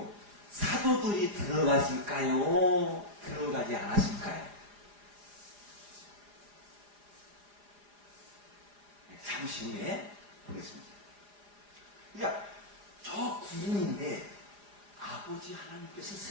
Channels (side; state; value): left; late; 4.9 ms